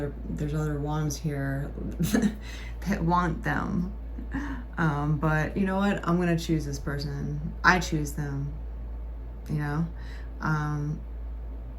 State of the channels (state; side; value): identical; both; correlation 1.00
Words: wands here that want them. But you know what? I'm gonna choose this person. I choose them. You know, and